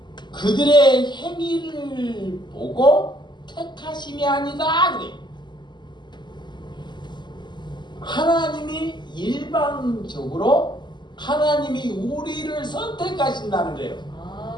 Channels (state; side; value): late; right; 0.21 ms